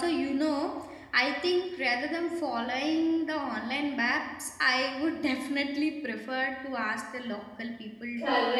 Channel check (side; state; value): both; identical; correlation 1.00